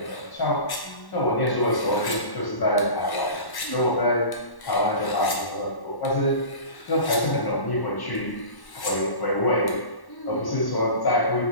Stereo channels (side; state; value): right; late; 1.1 ms